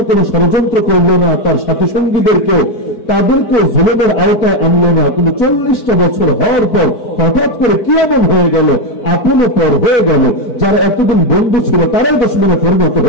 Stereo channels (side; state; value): right; late; 4.6 ms